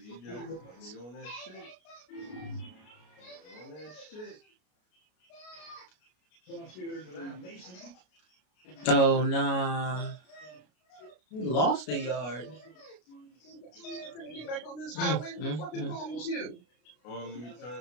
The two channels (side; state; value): right; late; 33 ms